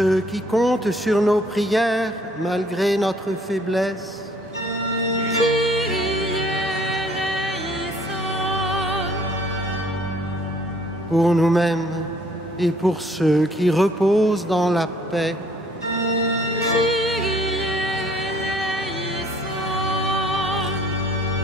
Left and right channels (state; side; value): normal; both; correlation 0.59